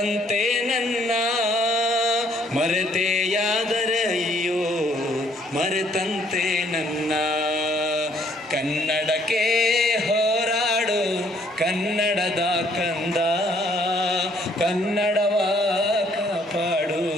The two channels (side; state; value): both; normal; correlation 0.64